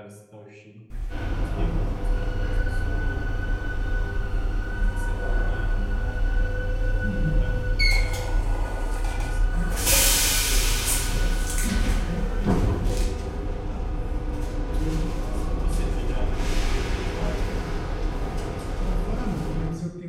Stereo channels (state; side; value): identical; both; correlation 1.00